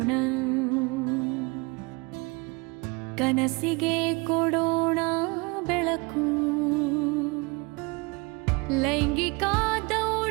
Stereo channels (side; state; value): left; quieter; 27.8 dB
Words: ಕನಸಿಗೆ ಕೊಡೋಣ ಬೆಳಕು. ಲೈಂಗಿಕ